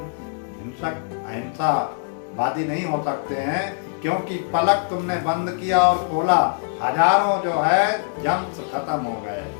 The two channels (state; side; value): silent; right; digital silence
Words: हिंसक अहिंसावादी नहीं हो सकते हैं, क्योंकि पलक तुमने बंद किया और खोला, हजारों जो है जम्स खत्म हो गए,